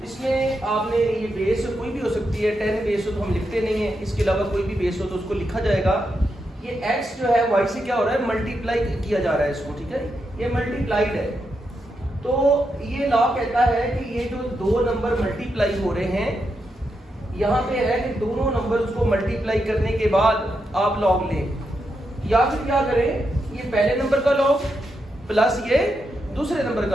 इसमें आपने ये base कोई भी हो सकती है, 10 बेस हो तो हम लिखते नहीं है, इसके अलावा कोई भी बेस हो तो उसको लिखा जाएगा। ये x जो है y से क्या हो रहा है, मल्टीप्लाई किया जा रहा है इसको, ठीक है, ये मल्टीप्लाइड है। तो ये लॉ कहता है कि ये जो दो नंबर मल्टीप्लाई हो रहे हैं, यहाँ पे है कि दोनों नंबर उसको मल्टीप्लाई करने के बाद आप लॉग लें, या फिर क्या करें, ये पहले नंबर का लॉग प्लस ये दूसरे नंबर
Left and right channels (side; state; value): both; normal; correlation 0.84